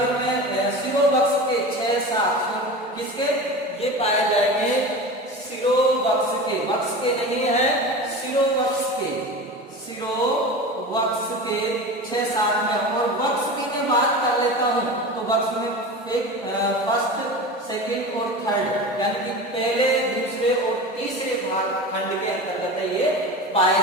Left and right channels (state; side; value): normal; both; correlation 0.30